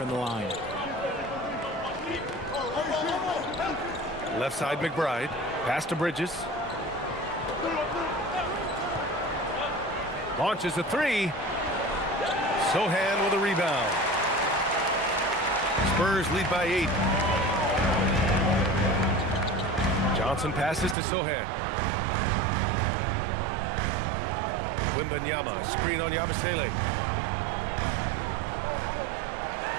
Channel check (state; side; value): drops out; left; at 21.0 s